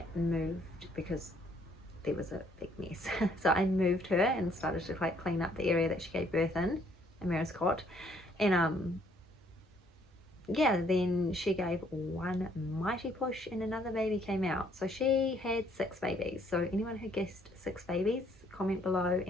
moved, because there was a big mess. So I moved her and started to like clean up the area that she gave birth in Amira's cot. And yeah, then she gave one mighty push and another baby came out. So she had 6 babies. So anyone who guessed 6 babies, comment below,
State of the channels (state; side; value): normal; both; correlation 0.65